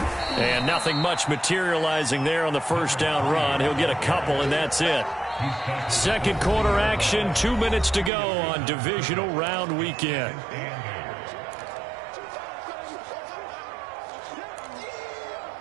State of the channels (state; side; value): drops out; left; at 8.1 s